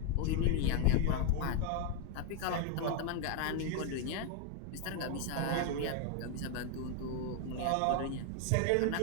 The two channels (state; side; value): different; both; correlation 0.00